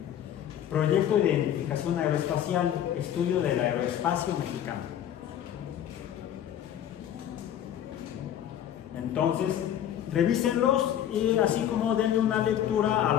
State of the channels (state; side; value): quieter; right; 10.6 dB